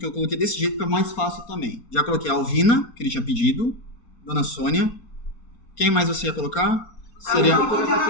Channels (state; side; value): late; right; 4.3 ms